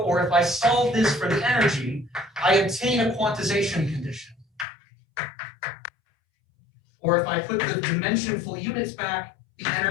if I solve this for the energy, I obtain a quantization condition. Or if I put the dimensionful units back, the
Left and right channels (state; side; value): drops out; right; at 4.7 s